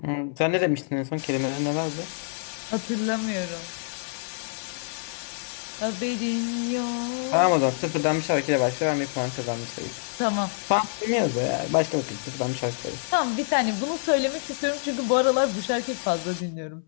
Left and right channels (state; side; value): silent; right; 61 dB below the other